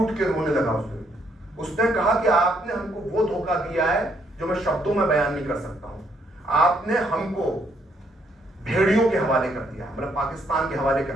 के रोने लगा। उसने कहा कि आपने हमको वो धोखा दिया है जो मैं शब्दों में बयान नहीं कर सकता हूं। आपने हमको भेड़ियों के हवाले कर दिया, मतलब पाकिस्तान के हवाले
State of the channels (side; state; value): both; normal; correlation 0.71